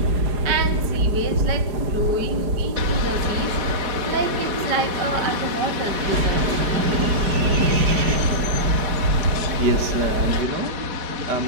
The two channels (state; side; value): late; left; 4.9 ms